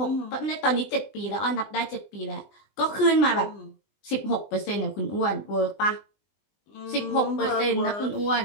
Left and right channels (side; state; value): right; late; 20 ms